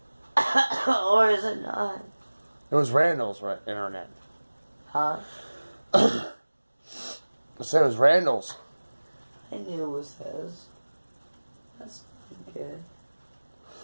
Or is it not? It was Randall's internet. Huh? I said it was Randall's. I knew it was his. That's not good.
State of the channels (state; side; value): inverted; both; correlation -1.00